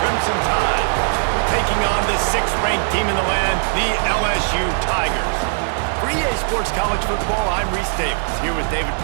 Crimson Tide, taking on the 6th-ranked team in the land, the LSU Tigers. For EA Sports College Football, I'm Reese Davis, here with David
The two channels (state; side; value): silent; left; 66 dB below the other